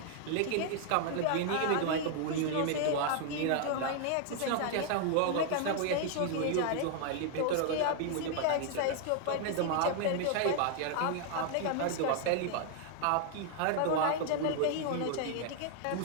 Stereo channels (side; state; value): both; different; correlation 0.00